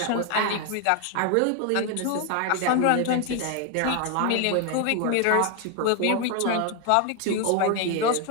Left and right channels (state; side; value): different; both; correlation 0.01